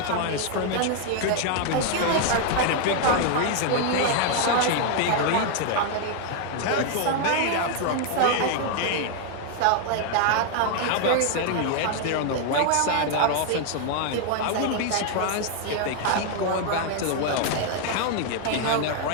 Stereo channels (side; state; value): both; different; correlation 0.00